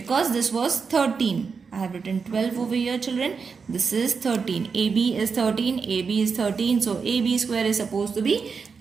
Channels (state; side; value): quieter; left; 5.4 dB